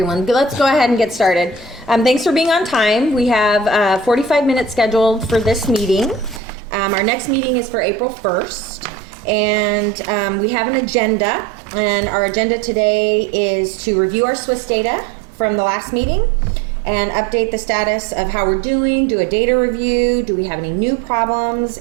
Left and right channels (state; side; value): drops out; left; at 6.4 s